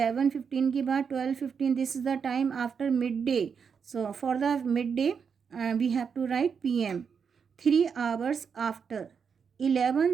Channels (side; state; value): left; quieter; 6.4 dB